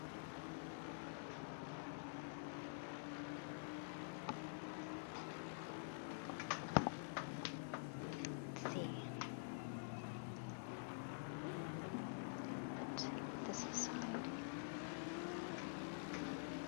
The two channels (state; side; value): silent; right; digital silence